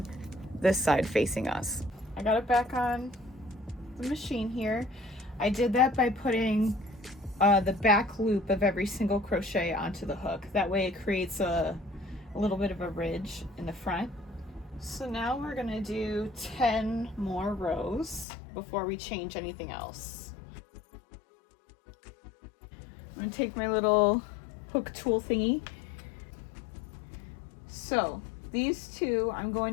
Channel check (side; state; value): right; drops out; at 18.2 s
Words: this side facing us. I got it back on the machine here. I did that by putting the back loop of every single crochet onto the hook. That way it creates a little bit of a ridge in the front. So now we're going to do 10 more rows before we change anything else. I'm going to take my little hook tool thingy. So these 2 I'm